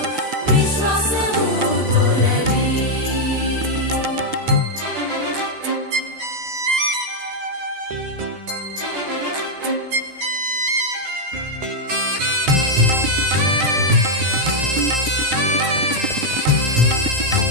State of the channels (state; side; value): late; left; 13 ms